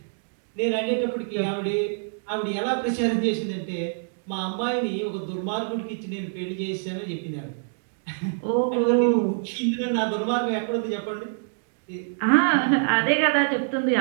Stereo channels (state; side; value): silent; left; digital silence